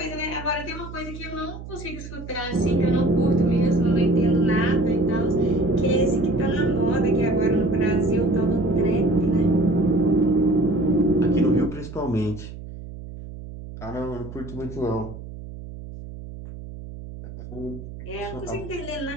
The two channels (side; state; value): right; noise; hum, 12 dB below the sound